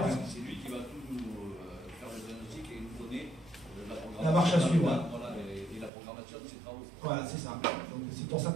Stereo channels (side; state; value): left; drops out; at 5.9 s